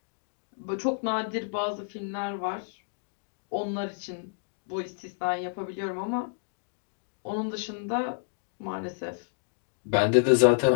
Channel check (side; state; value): right; silent; digital silence